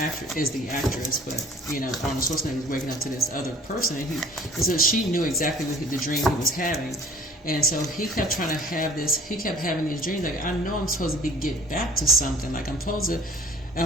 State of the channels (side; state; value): both; normal; correlation 0.49